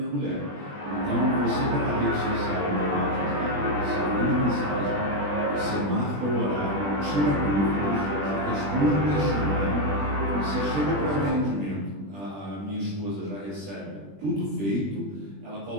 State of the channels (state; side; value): late; left; 20 ms